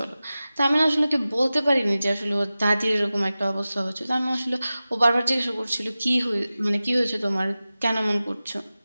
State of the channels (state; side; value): inverted; both; correlation -0.96